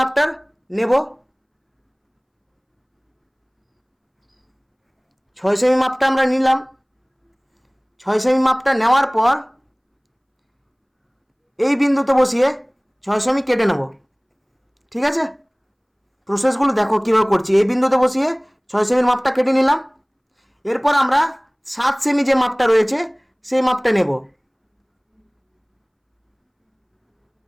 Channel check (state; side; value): identical; both; correlation 1.00